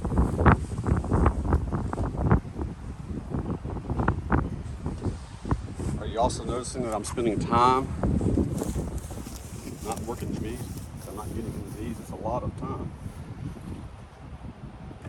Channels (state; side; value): identical; both; correlation 1.00